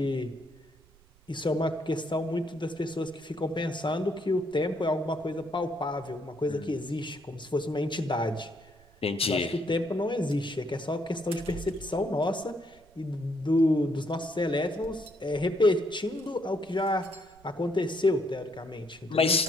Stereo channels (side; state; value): right; noise; rumble, 28 dB below the sound